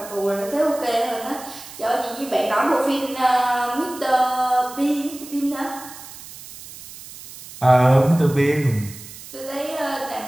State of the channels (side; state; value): right; noise; hiss, 16 dB below the sound